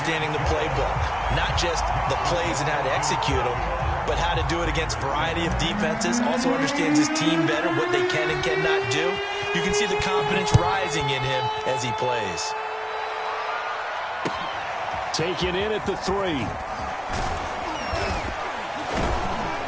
the playbook. Not just the plays and how to execute them, but how to do it against a variety of defenses. Also understands his team better, what they can and cannot do. You can see the confidence rising in him as he plays. Taken in at the 3.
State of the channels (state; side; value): identical; both; correlation 1.00